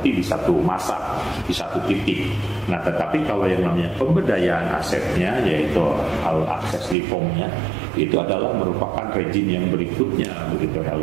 di satu masa, di satu titik. Nah, tetapi kalau yang namanya pemberdayaan asetnya, yaitu akses reformnya, itu adalah merupakan rezim yang berikutnya, begitu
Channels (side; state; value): left; drops out; at 7.0 s